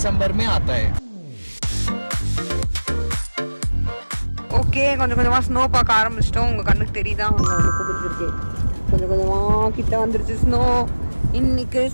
में आता है. ஓகே, கொஞ்சம் கொஞ்சமா ஸ்னோ பார்க்க ஆரம்பிச்சிட்டோம். உங்க கண்ணுக்கு தெரியுதா? உங்களுக்கு பிடிச்சிருக்கு. கொஞ்சம் கொஞ்சமா கிட்ட வந்துருச்சு ஸ்னோ. இன்னைக்கு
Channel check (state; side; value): inverted; both; correlation -1.00